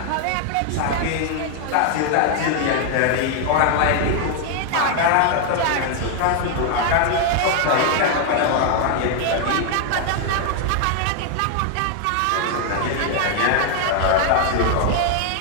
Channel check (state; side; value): different; both; correlation 0.00